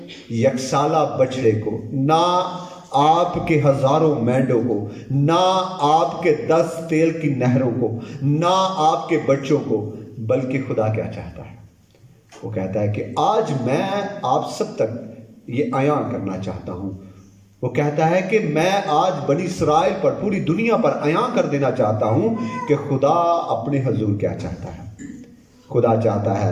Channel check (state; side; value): identical; both; correlation 1.00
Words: یکسالہ بچڑے کو، نہ آپ کے ہزاروں مینڈوں کو، نہ آپ کے 10 تیل کی نہروں کو، نہ آپ کے بچوں کو، بلکہ خدا کیا چاہتا ہے؟ وہ کہتا ہے کہ آج میں آپ سب تک یہ عیاں کرنا چاہتا ہوں۔ وہ کہتا ہے کہ میں آج بنی اسرائیل پر، پوری دنیا پر عیاں کر دینا چاہتا ہوں کہ خدا اپنے حضور کیا چاہتا ہے۔ خدا چاہتا